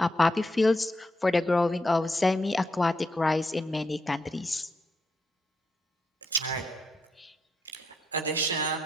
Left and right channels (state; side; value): normal; both; correlation 0.80